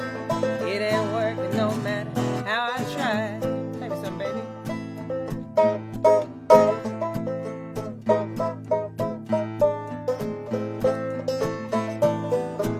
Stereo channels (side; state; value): both; identical; correlation 1.00